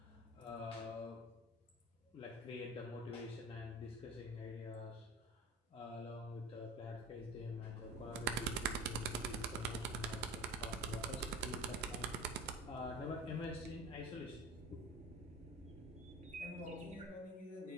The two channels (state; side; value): normal; both; correlation 0.35